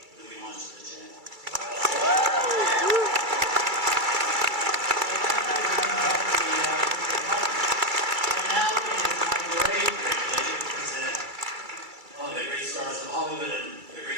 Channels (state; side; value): late; left; 2.3 ms